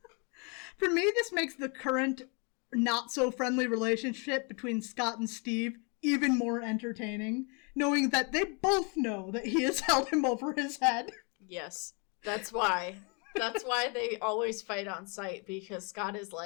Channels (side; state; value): right; quieter; 33.8 dB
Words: For me, this makes the current not-so-friendly relationship between Scott and Steve even more entertaining, knowing that they both know that he has held him over his head. Yes. That's why. That's why they always fight on sight, because Scott is